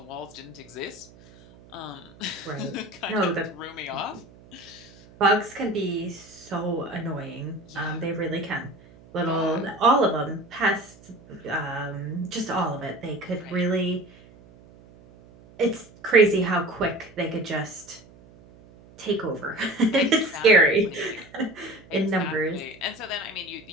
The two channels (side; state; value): right; noise; hum, 23 dB below the sound